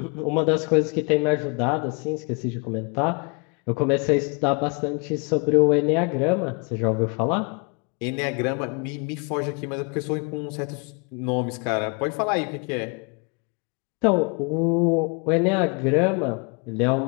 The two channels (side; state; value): right; quieter; 33.4 dB